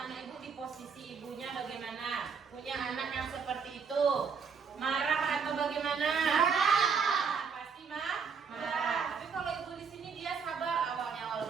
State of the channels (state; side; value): quieter; left; 5.9 dB